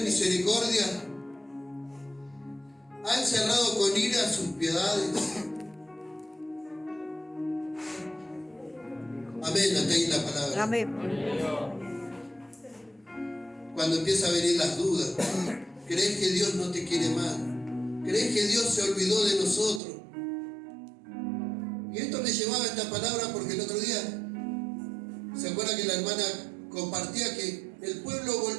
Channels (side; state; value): left; drops out; at 19.8 s